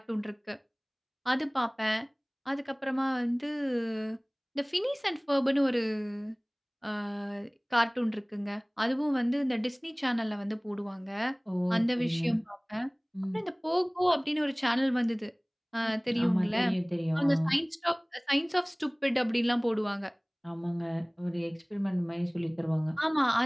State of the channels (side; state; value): both; identical; correlation 1.00